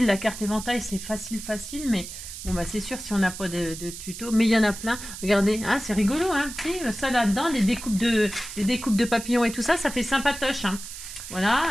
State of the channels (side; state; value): right; noise; hiss, 11 dB below the sound